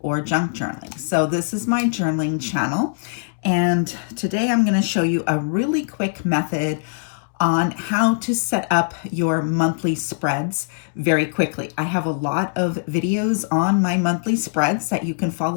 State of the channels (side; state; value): right; silent; digital silence